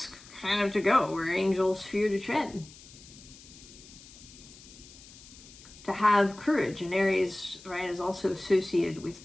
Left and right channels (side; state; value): left; noise; hiss, 20 dB below the sound